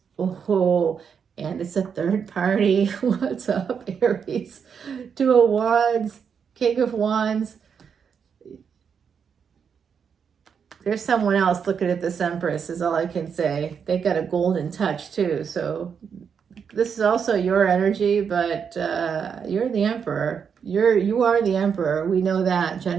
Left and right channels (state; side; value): quieter; left; 6.9 dB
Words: Oh, and it's a third party. What's up, Aries? Two of Wands, King of Wands. There's someone else looking at this Empress is all I can say. They got a golden touch too. So this is also your energy, but you're the Emperor. You are the Emperor. We know that.